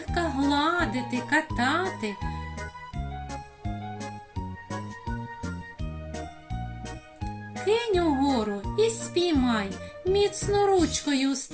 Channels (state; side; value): identical; both; correlation 1.00